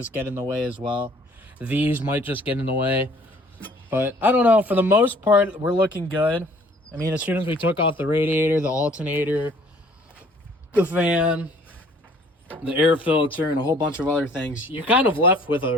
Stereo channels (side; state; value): both; normal; correlation 0.56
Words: get in the way as well. These might just get in the way. But I don't know. For the most part, we're looking good. I mean, as soon as we took off the radiator, the alternator, the fan, the air filter, and a whole bunch of other things, you're kind of left with